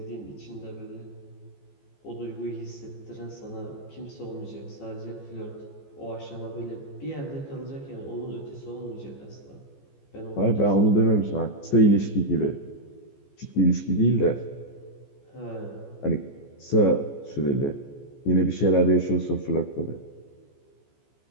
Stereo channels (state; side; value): late; right; 14 ms